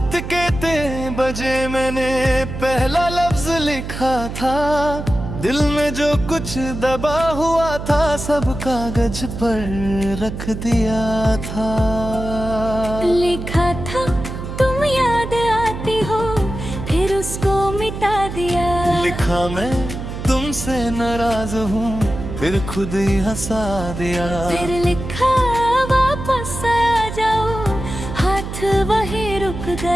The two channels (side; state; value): right; noise; hum, 7 dB below the sound